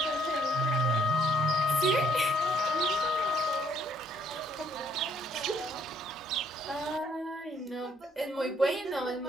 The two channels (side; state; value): both; normal; correlation 0.65